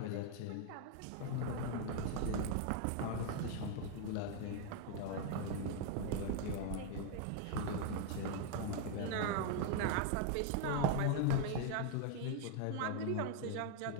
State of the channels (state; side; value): different; both; correlation 0.00